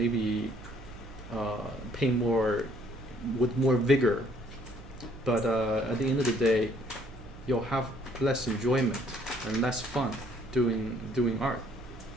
paint more with more vigor, but at the end of the day, you'll have less enjoyment and less fun doing art.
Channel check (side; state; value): right; noise; hum, 17 dB below the sound